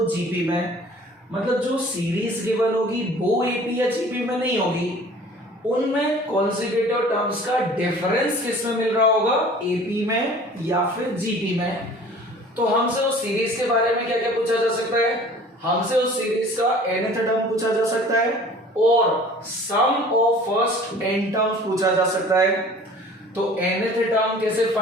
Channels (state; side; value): normal; both; correlation 0.47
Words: जीपी में। मतलब जो सीरीज गिवन होगी वो एपी या जीपी में नहीं होगी, उनमें कॉन्सेक्यूटिव टर्म्स का डिफरेंस किसमें मिल रहा होगा, एपी में या फिर जीपी में। तो हमसे उस सीरीज के बारे में क्या क्या पूछा जा सकता है, हमसे उस सीरीज का nth टर्म पूछा जा सकता है और sum of first n terms पूछा जा सकता है। तो nth टर्म कैसे